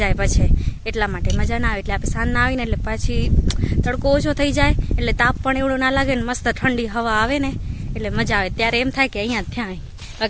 પછી, એટલા માટે મજા ના આવે। એટલે આપણે સાંજના આવીને એટલે પાછી તડકો ઓછો થઈ જાય એટલે તાપ પણ એવડો ના લાગે ને મસ્ત ઠંડી હવા આવે ને એટલે મજા આવે। ત્યારે એમ થાય કે અહીંયા થયા,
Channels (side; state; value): both; identical; correlation 1.00